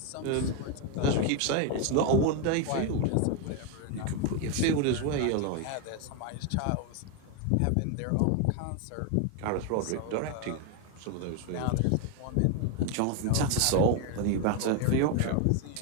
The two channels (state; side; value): different; both; correlation 0.02